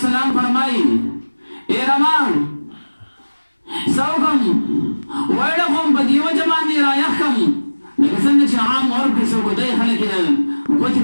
فرمایي ای ربا څه وکړم ویړه کوم په دې وجه باندې رایخ کړم لکه څنګه چې عام ورپسې څوکۍ خلک یې د ګوتې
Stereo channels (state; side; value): inverted; both; correlation -1.00